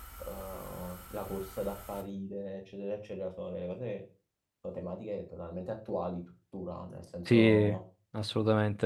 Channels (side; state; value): both; identical; correlation 1.00